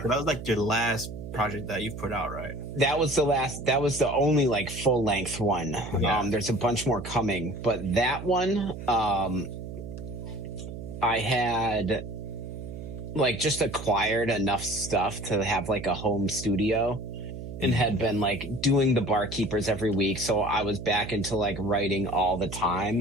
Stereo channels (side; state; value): right; noise; hum, 9 dB below the sound